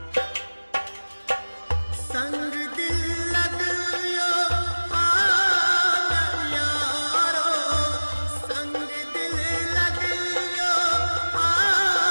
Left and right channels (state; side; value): inverted; both; correlation -1.00